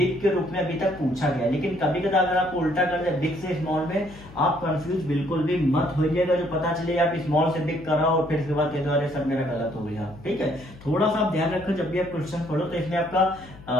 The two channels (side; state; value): left; noise; hum, 19 dB below the sound